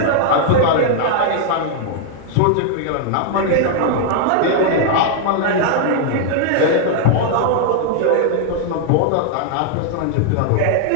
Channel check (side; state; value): both; different; correlation 0.00